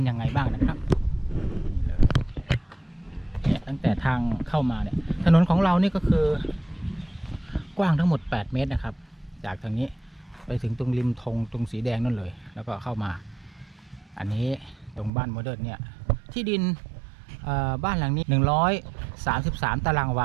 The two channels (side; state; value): left; drops out; at 15.1 s